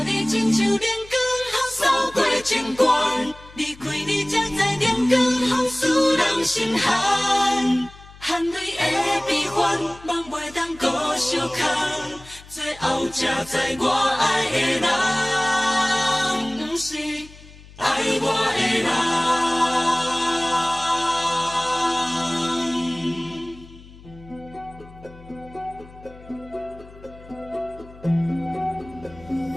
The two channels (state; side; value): noise; left; hum, 21 dB below the sound